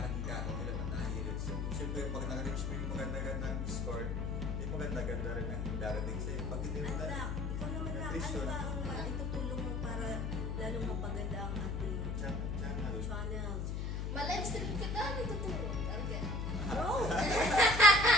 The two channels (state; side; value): noise; left; hum, 1 dB below the sound